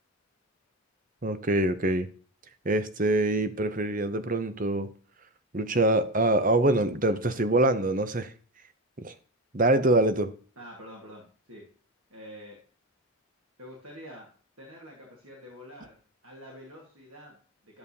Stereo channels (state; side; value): normal; both; correlation 0.21